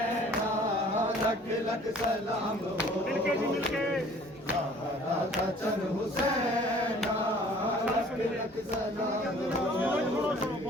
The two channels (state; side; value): normal; both; correlation 0.52